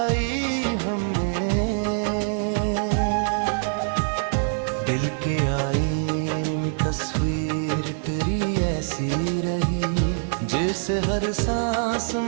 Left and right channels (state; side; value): silent; left; 62 dB below the other